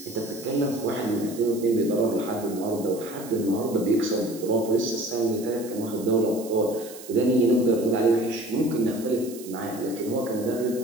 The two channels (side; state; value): right; noise; hiss, 16 dB below the sound